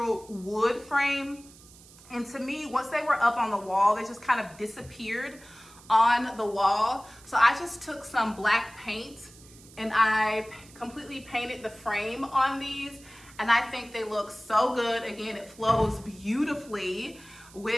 wood frame. And to me, once they were up on the wall, they just kind of disappeared on the wall. So I just took some black paint and I completely painted the frame on these. And I think they look so good. Again, it flows beautifully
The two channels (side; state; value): right; noise; hiss, 23 dB below the sound